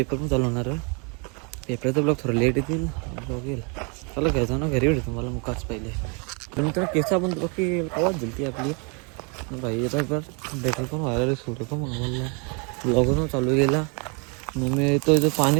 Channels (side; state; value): left; quieter; 34.2 dB